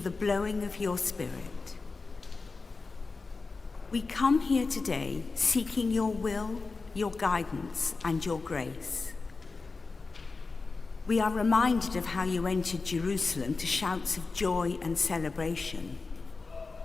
blowing of your Spirit. We come here today seeking your will, your guidance, and your grace. We are reminded of how you entered Jerusalem to shouts of joy and celebration.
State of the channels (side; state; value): right; quieter; 4.1 dB